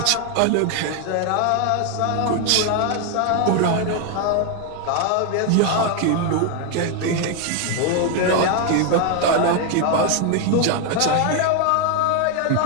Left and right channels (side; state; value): both; different; correlation 0.01